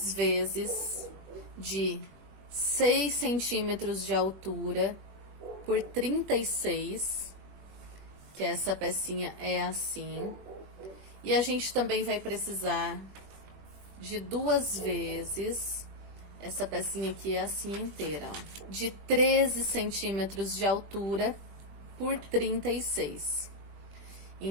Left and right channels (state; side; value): late; left; 21 ms